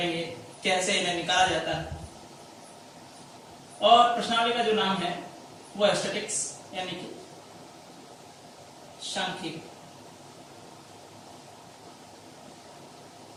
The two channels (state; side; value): identical; both; correlation 1.00